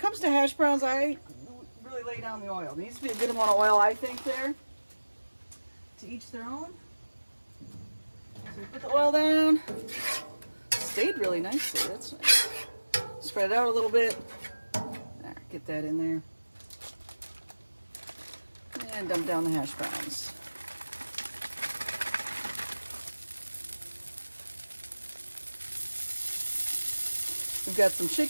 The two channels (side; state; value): both; inverted; correlation -1.00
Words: to hash browns, I really lay down the oil. There needs to be a good amount of oil, I think, there. To each their own. So we put the oil down. Stayed really nicely. That's nice. Spread it out a little bit. There, get that in there. And dump down the hash browns. We've got some